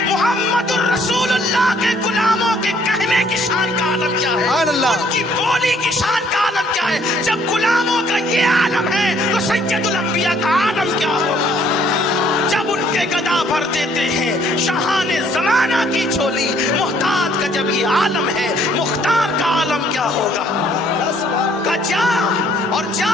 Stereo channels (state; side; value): normal; both; correlation 0.64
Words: मोहम्मदुर रसूलुल्लाह अल्लाह के गुलामों के कहने की शान का आलम क्या है, उनकी बोली की शान का आलम क्या है। जब गुलामों का ये आलम है तो सैयदुल अंबिया का आलम क्या होगा। जब उनके गदा भर देते हैं शाहाने जमाना की झोली, मुहताज का जब ये आलम है, मुख्तार का आलम क्या होगा। का जा और